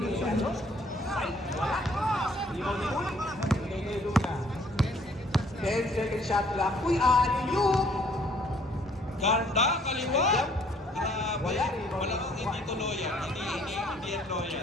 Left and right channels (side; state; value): both; normal; correlation 0.62